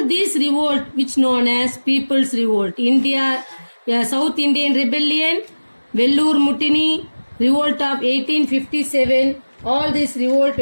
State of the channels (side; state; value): both; inverted; correlation -1.00